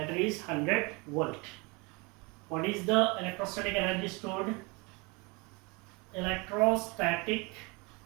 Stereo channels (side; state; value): left; quieter; 28.1 dB